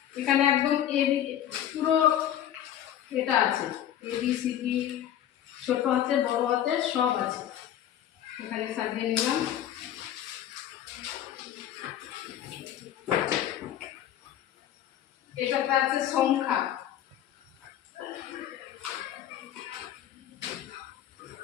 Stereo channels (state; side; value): quieter; right; 11.2 dB